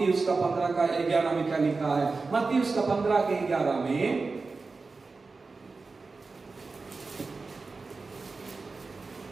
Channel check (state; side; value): quieter; left; 4.1 dB